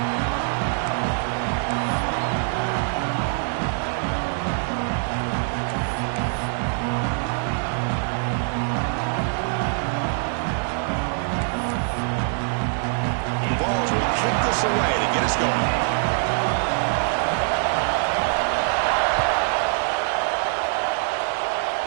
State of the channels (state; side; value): silent; left; 61 dB below the other